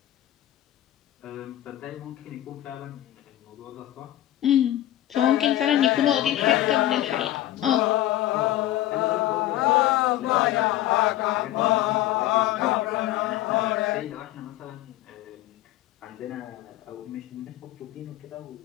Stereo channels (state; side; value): quieter; right; 14.0 dB